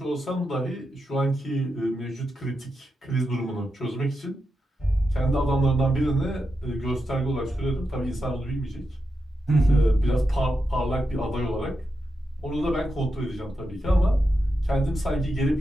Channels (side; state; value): both; normal; correlation 0.87